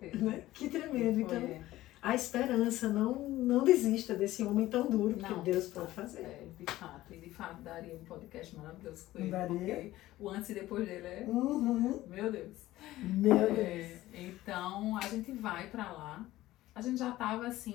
Né? Que tremendo. Então, a esperança, não desista desse homem tão duro, porque Deus pode fazer. De fato, daria um podcast maravilhoso com ele, daria. Porque o antes e depois dele meu Deus. Então, a gente vai para lá. A gente já estava,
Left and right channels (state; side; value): quieter; right; 16.0 dB